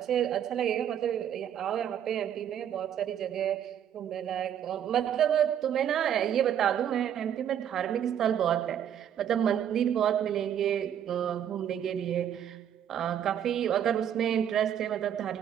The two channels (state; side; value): quieter; left; 9.6 dB